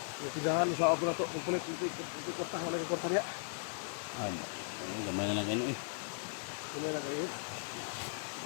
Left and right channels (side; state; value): right; silent; 53 dB below the other